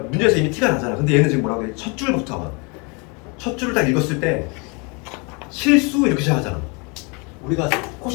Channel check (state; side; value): quieter; right; 31.3 dB